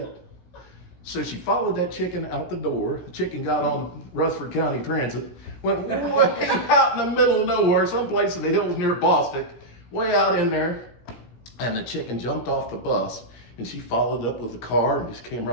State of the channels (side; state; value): right; late; 17 ms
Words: So she followed that chicken out the door. The chicken got on the Rutherford County Transit, went way out in the middle of nowhere, someplace in the hills near Bostic, way out in there. And the chicken jumped off the bus, and she followed up with the car and just came